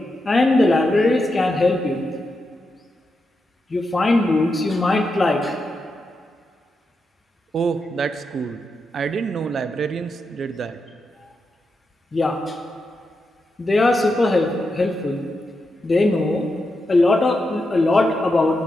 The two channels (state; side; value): normal; both; correlation 0.86